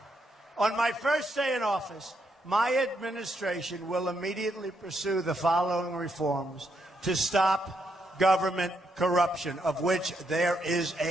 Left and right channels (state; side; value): normal; both; correlation 0.78